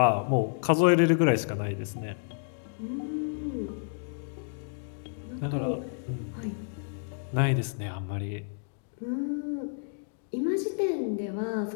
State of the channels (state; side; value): silent; right; digital silence